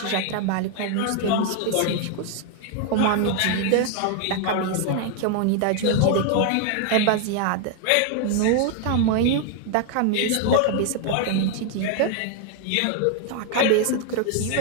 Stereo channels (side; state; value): both; different; correlation 0.00